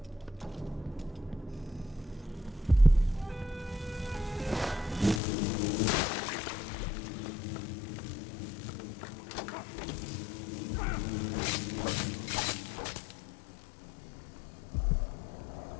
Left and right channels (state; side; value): drops out; right; at 5.2 s